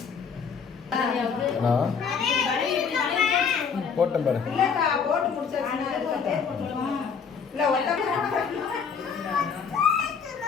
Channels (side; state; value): right; quieter; 6.2 dB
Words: போட்டேன் பாரு. இல்லக்கா போட்டு முடிச்சாச்சுன்னா இல்ல